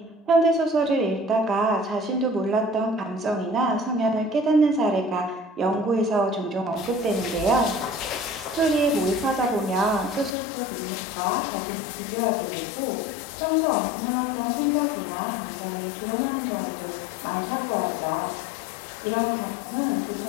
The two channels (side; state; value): right; drops out; at 10.4 s